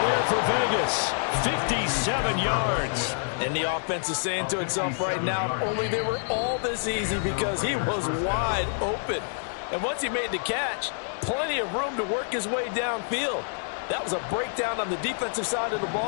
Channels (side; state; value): right; silent; digital silence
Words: there for Vegas. 57 yards. And the offense is saying to itself right now, only they were all this easy because he was wide open. And once he made the catch, plenty of room to work his way downfield. That was a breakdown on the defensive side of the